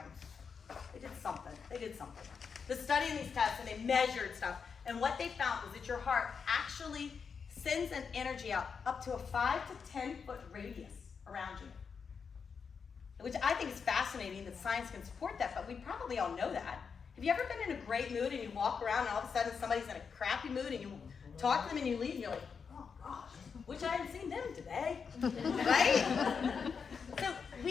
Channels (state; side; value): quieter; right; 6.0 dB